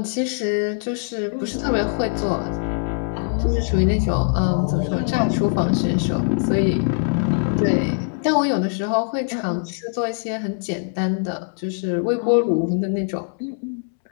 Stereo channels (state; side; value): silent; right; 64 dB below the other